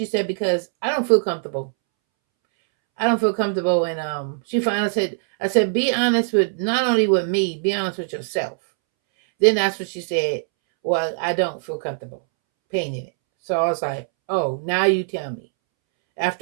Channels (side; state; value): left; silent; 64 dB below the other